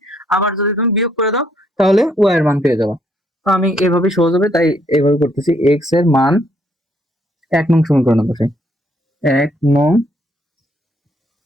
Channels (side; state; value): both; normal; correlation 0.70